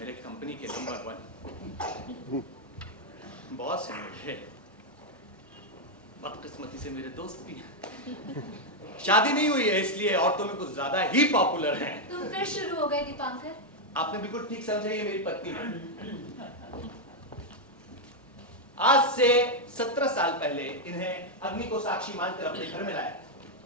कंपनी के नंबर 1 बॉस हैं मेरे, बदकिस्मती से मेरे दोस्त भी हैं। शादी नहीं हुई है इसलिए औरतों में कुछ ज्यादा ही पॉपुलर हैं। तुम फिर शुरू हो गए दीपांकर। आपने बिल्कुल ठीक समझा, ये मेरी पत्नी है। आज से 17 साल पहले इन्हें अग्नि को साक्षी मानकर अपने घर में लाया।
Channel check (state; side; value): normal; both; correlation 0.00